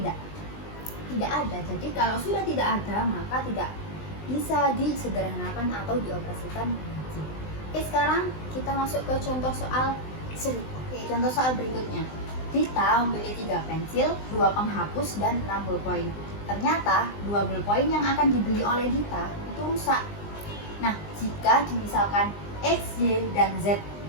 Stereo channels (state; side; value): late; right; 20 ms